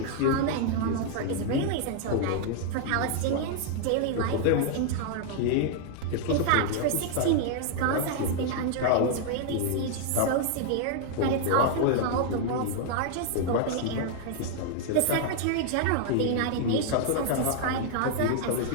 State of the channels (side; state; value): both; different; correlation 0.00